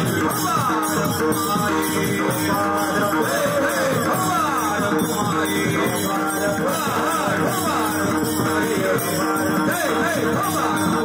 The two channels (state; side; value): identical; both; correlation 1.00